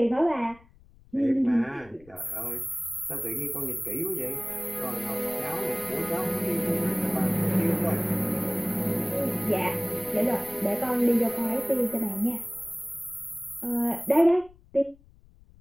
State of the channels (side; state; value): left; noise; rumble, 26 dB below the sound